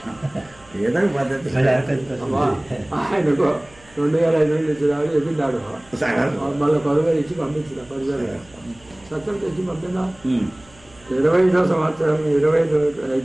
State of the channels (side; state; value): right; noise; hum, 26 dB below the sound